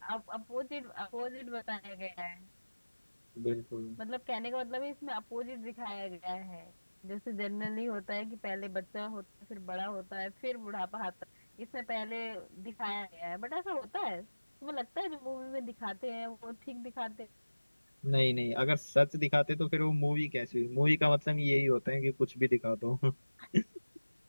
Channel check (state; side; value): inverted; both; correlation -1.00